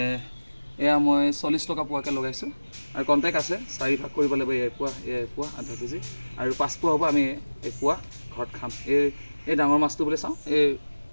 এয়া মই 40 টকা পোৱাকৈ লগাইছোঁ আৰু কণ্টেক্ট আছে। 4 ভাগ কৰিব লাগিব। এয়া পোৱা আধা কেজি আৰু 5 পোৱা হ'ব। আমি পোৱা ঘৰত খাম। এই ডাঙৰ মাছটো বুলি চাওঁ, এই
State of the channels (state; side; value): inverted; both; correlation -1.00